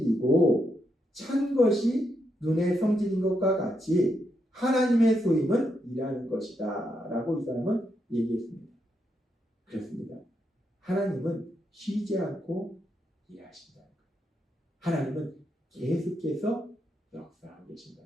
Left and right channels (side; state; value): both; normal; correlation 0.81